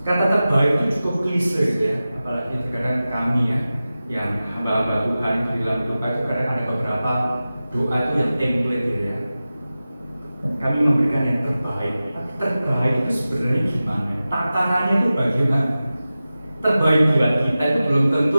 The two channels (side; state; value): both; inverted; correlation -0.95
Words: kata terbaik itu cukup klise gitu ya, apalagi terkadang kami ya yang hamba-hamba Tuhan itu di dalam doa itu kadang ada beberapa doa itu yang template gitu ya, kami memberikan yang terbaik. Tapi terbaik itu sebenarnya gimana? Takarannya itu bagaimana? Terbaik buat kita itu belum